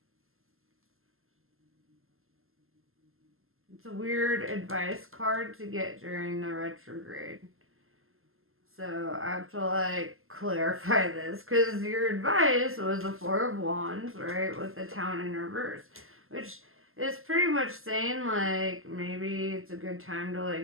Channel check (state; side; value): late; left; 0.61 ms